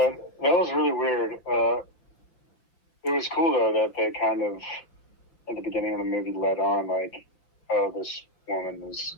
that was really weird. It was cool, though, that they kind of, at the beginning of the movie, led on, like, oh, this woman is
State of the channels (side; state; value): right; late; 5.8 ms